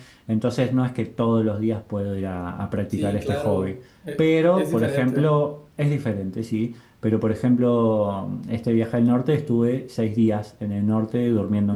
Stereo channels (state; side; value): identical; both; correlation 1.00